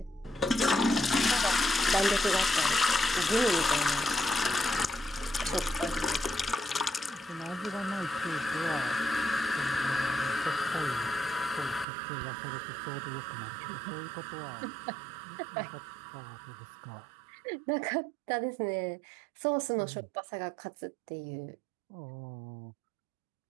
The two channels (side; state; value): left; drops out; at 11.9 s